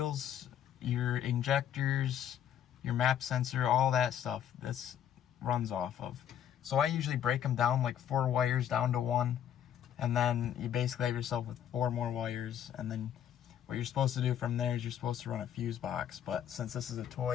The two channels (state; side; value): quieter; right; 9.8 dB